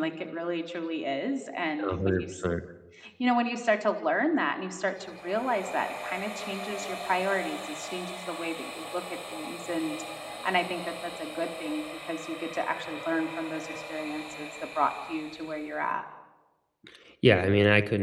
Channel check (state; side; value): identical; both; correlation 1.00